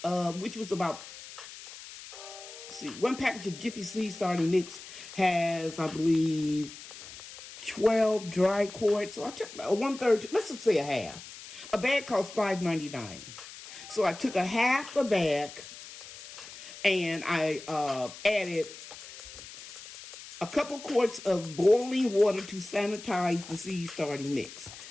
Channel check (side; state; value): left; noise; hiss, 15 dB below the sound